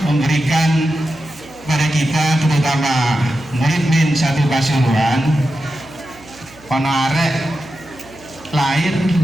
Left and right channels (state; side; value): noise; right; hum, 24 dB below the sound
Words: memberikan pada kita, terutama murid min satu Pasuruan, arek lahir